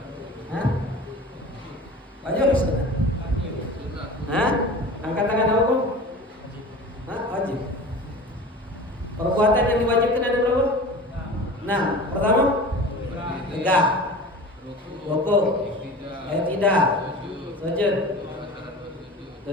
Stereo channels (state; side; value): normal; both; correlation 0.37